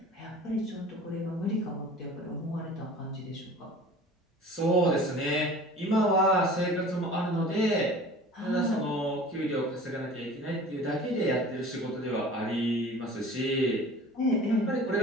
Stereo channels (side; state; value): both; normal; correlation 0.42